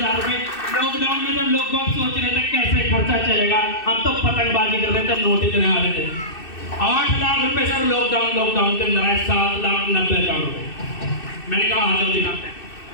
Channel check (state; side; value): late; right; 2.6 ms